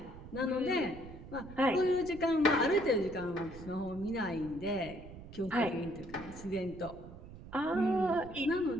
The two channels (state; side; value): noise; right; rumble, 15 dB below the sound